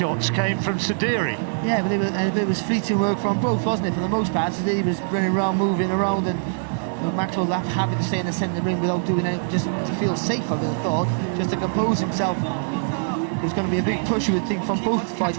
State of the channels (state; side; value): silent; left; digital silence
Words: came from Sediri. Yeah, but it was fleeting work from both, wasn't it? For the most part, Sediri was running around, moving around, and Maxwell happy to stay in the centre of the ring without doing anything, just to feel safe, I would have thought, just to compose himself. There's going to be a big push, you would think, from both